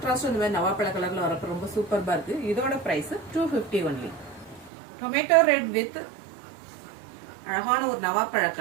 இந்த மாதிரி நவாப்பழ கலர்ல வரப்ப ரொம்ப சூப்பர்பா இருக்கு. இதோட price 250 only. Tomato red with அழகான ஒரு நவாப்பழ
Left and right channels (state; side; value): drops out; left; at 4.7 s